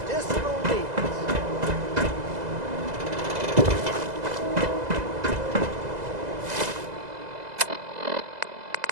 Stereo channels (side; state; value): left; late; 2.0 ms